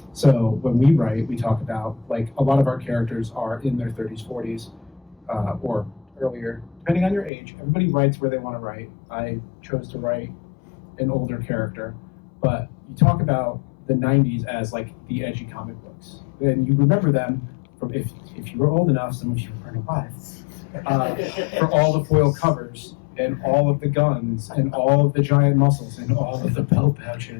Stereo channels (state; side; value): drops out; right; at 7.3 s